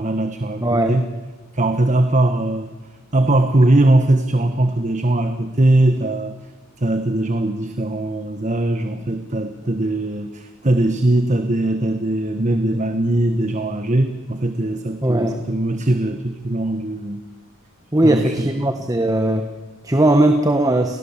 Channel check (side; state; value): both; normal; correlation 0.81